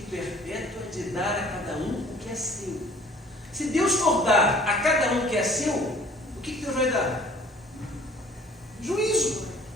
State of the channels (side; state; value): both; normal; correlation 0.52